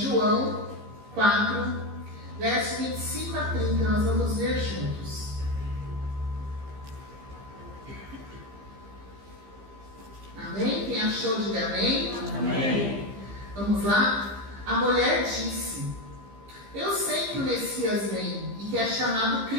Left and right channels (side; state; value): left; late; 15 ms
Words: 4, verso 25 a 30, nós vamos ver juntos. Amém? Quem achou, diga amém. Amém. Vamos lá? A mulher disse: eu sei que o Messias vem e que é chamado